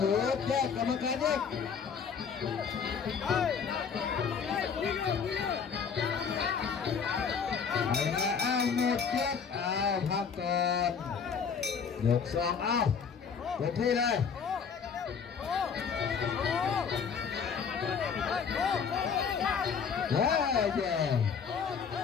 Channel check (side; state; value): right; quieter; 6.4 dB